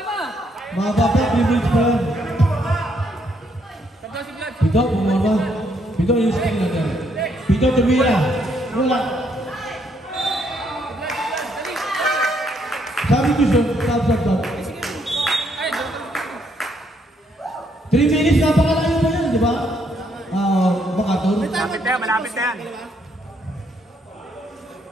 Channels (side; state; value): both; normal; correlation 0.72